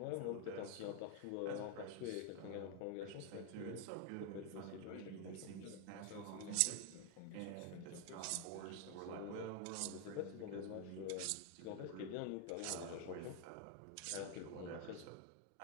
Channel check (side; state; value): both; different; correlation 0.01